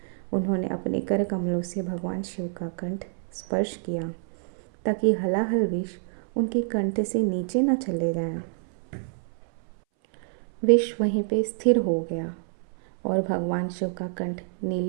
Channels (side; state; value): left; silent; 60 dB below the other